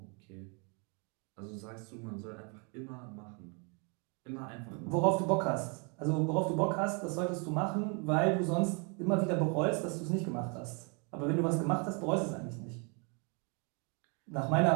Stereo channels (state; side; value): quieter; left; 35.0 dB